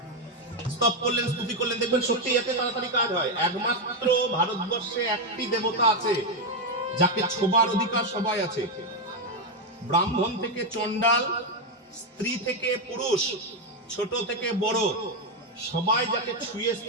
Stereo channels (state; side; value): normal; both; correlation 0.06